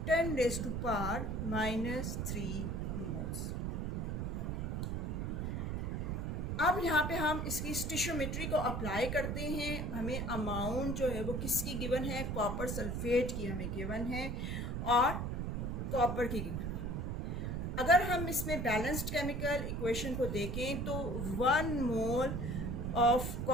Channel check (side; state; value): right; noise; rumble, 2 dB below the sound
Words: 10 raised to power minus 3 moles. अब यहाँ पे हम इसकी स्टिशियोमेट्री को apply करते हैं। हमें amount जो है वो किसकी गिवन है, कॉपर सल्फेट की हमें गिवन है और कॉपर की गिवन है। अगर हम इसमें बैलेंस्ड केमिकल इक्वेशन को देखें तो 1 मोल ऑफ